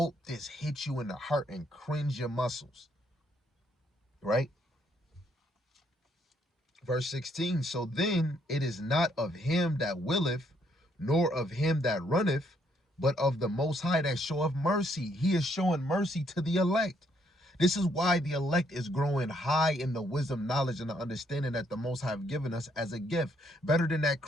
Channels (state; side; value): normal; both; correlation 0.71